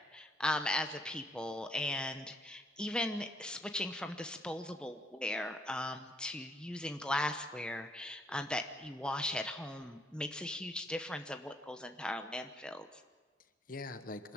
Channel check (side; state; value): both; normal; correlation 0.69